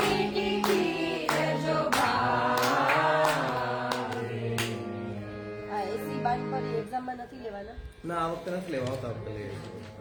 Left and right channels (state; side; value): identical; both; correlation 1.00